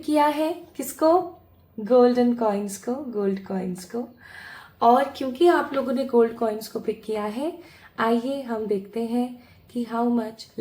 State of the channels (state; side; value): identical; both; correlation 1.00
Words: किया है किसको? गोल्डन कॉइन्स को, गोल्ड कॉइन्स को। और क्योंकि आप लोगों ने गोल्ड कॉइन्स को पिक किया है, आइए हम देखते हैं कि how much